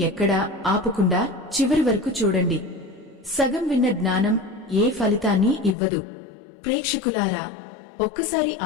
ఆపకుండా చివరి వరకు చూడండి. సగం విన్న జ్ఞానం ఏ ఫలితాన్ని ఇవ్వదు. ప్రేక్షకులారా, ఒక్కసారి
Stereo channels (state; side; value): drops out; right; at 5.8 s